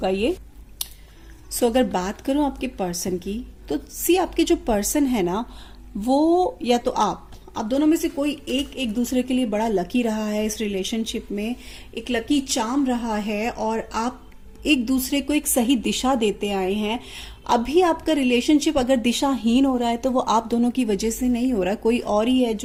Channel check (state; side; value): identical; both; correlation 1.00